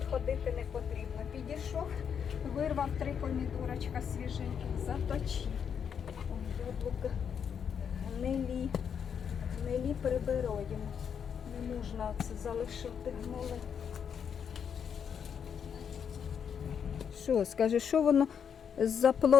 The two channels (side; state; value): right; quieter; 7.5 dB